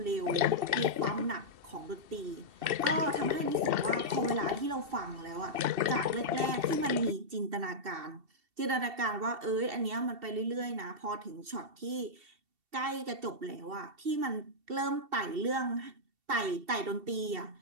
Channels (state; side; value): late; left; 2.7 ms